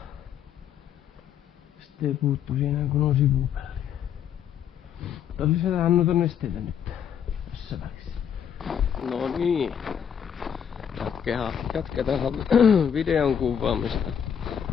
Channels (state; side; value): quieter; right; 8.4 dB